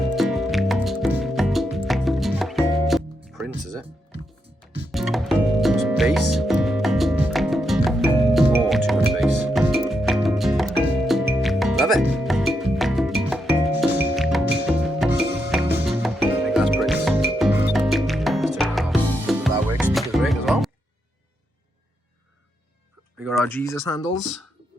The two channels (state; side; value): normal; both; correlation 0.82